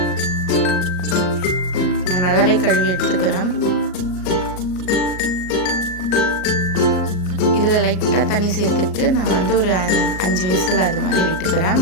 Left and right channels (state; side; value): late; right; 38 ms